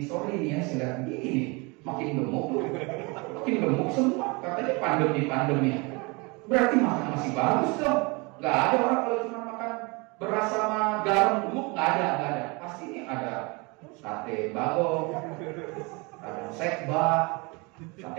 sorry nih ya, saya lihat begini nih, makin gemuk semua. Katanya pandemi ya. Berarti makan masih bagus dong. Nggak ada orang kalau cuma makan beras sama garam gemuk, nggak ada. Pasti ini ada sate bagong, ada sekba,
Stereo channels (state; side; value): quieter; left; 28.2 dB